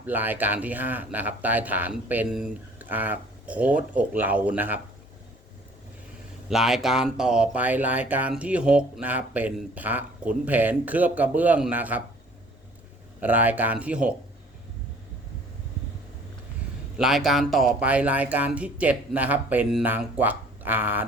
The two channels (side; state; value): both; normal; correlation 0.54